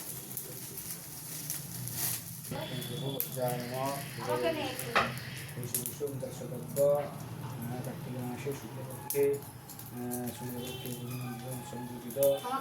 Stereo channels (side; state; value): both; identical; correlation 1.00